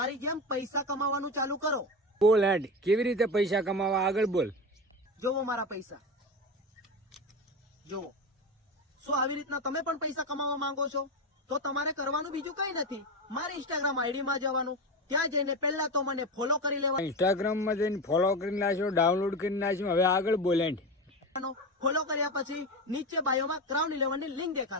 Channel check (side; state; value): both; normal; correlation 0.21